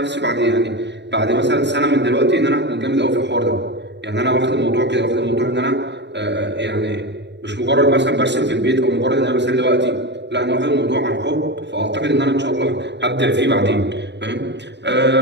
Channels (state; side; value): late; left; 0.51 ms